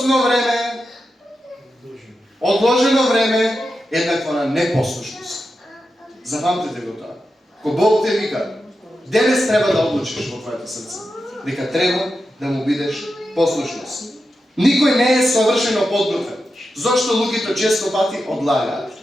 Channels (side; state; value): both; normal; correlation 0.90